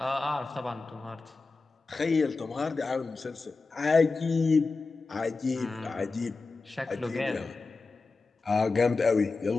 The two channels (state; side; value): quieter; right; 3.9 dB